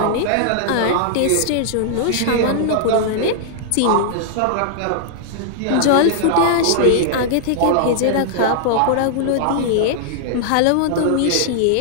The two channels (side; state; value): both; different; correlation -0.01